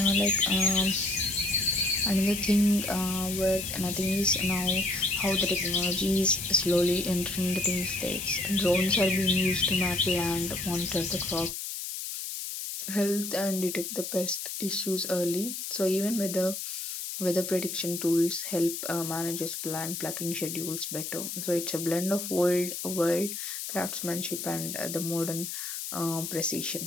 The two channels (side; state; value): left; noise; hiss, 6 dB below the sound